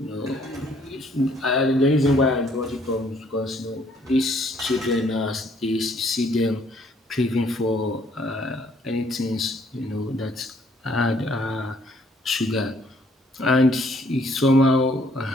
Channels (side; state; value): both; normal; correlation 0.64